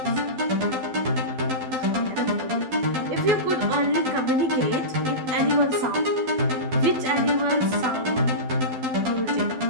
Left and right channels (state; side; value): late; left; 12 ms